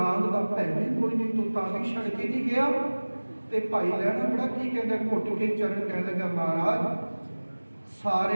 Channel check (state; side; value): inverted; both; correlation -1.00